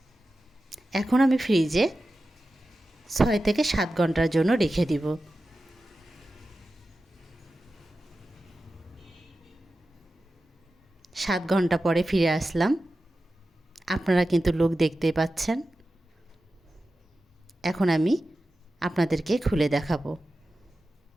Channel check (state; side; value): normal; both; correlation 0.93